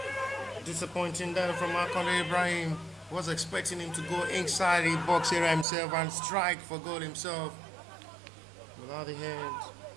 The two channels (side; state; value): left; drops out; at 5.7 s